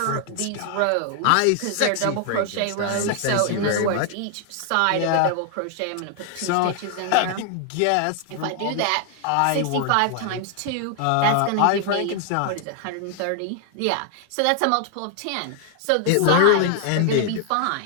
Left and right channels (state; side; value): different; both; correlation 0.00